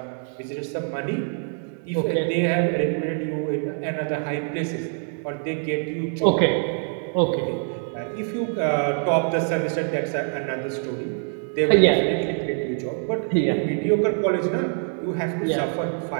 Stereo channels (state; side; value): silent; left; 56 dB below the other